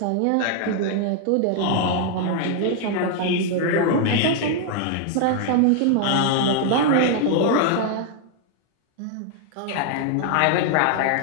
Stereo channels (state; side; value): different; both; correlation 0.00